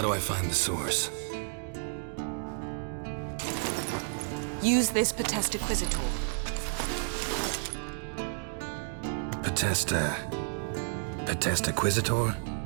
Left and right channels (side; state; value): left; silent; digital silence